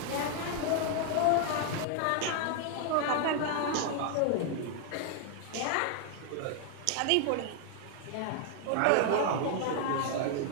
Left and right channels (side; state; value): both; different; correlation 0.00